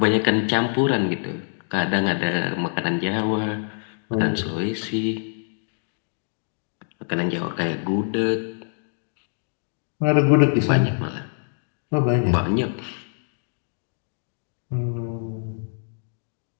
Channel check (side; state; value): right; silent; digital silence